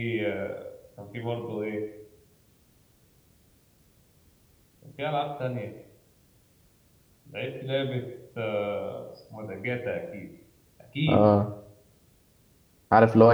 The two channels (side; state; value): both; identical; correlation 1.00